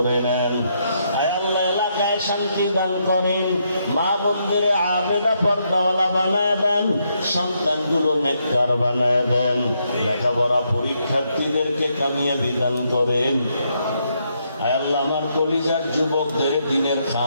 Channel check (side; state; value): both; inverted; correlation -0.77